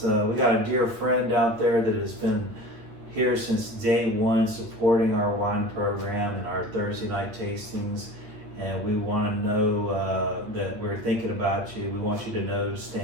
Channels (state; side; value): late; left; 9.3 ms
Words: dear friend out there that has been here since day one, supporting our wine program and our Thursday night tastings. And we want to know that we're thinking about you. We want you to know,